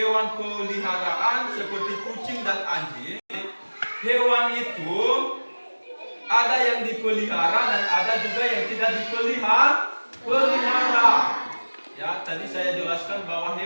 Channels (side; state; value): both; inverted; correlation -1.00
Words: peliharaan seperti kucing dan anjing. Hewan itu ada yang dipelihara dan ada juga yang tidak dipelihara. Ya, tadi saya jelaskan bahwa